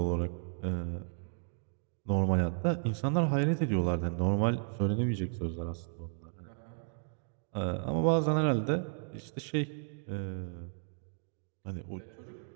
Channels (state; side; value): silent; left; 55 dB below the other